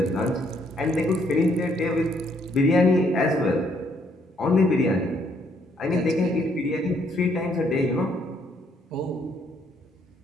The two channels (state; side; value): normal; both; correlation 0.69